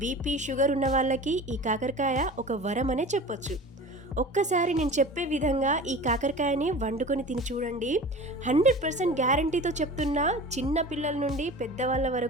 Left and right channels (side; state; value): both; normal; correlation 0.37